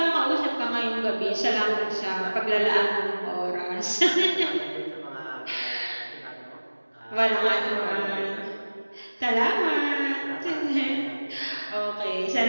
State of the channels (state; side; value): inverted; both; correlation -1.00